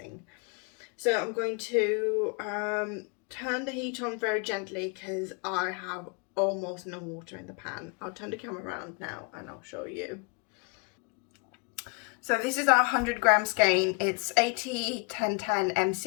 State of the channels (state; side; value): quieter; right; 32.0 dB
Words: So I'm going to turn the heat on very gently because I have almost no water in the pan. I'll turn the camera around now and I'll show you. So this is our 100 gram skein. It's 80-10-10